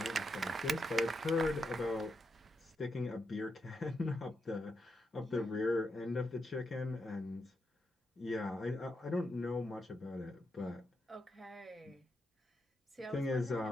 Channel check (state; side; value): normal; both; correlation 0.83